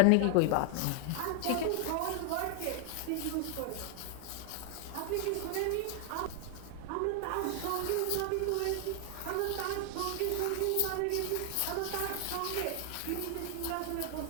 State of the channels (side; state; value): both; different; correlation 0.00